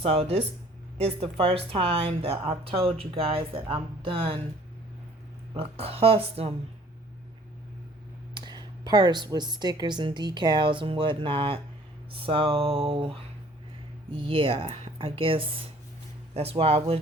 this is the first time that I've told you guys that I'm done a custom purse with stickers and decals and whatnot. So yeah, I guess that's why I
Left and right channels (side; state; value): both; normal; correlation 0.55